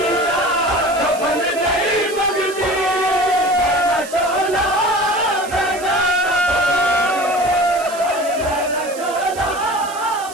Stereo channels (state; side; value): noise; right; hiss, 15 dB below the sound